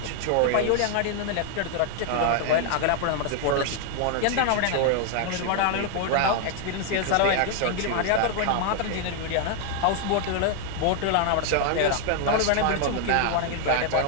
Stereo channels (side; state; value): both; different; correlation 0.00